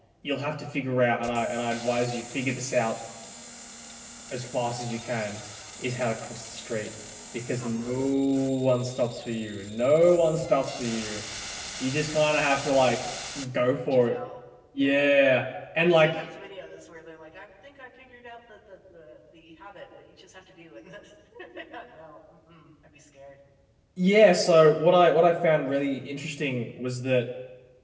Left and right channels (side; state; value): both; identical; correlation 1.00